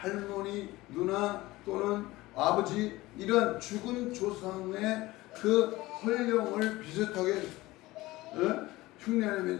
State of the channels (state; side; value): quieter; right; 19.1 dB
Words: 누나 또는 아버지 이런 죽은 조상의 그 혼령을 비슷하게